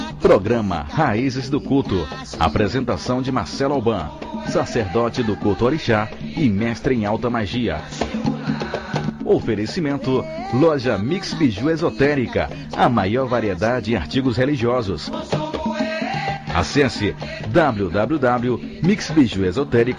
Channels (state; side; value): identical; both; correlation 1.00